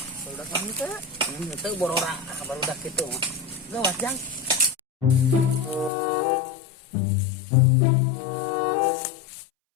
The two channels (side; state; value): right; drops out; at 5.9 s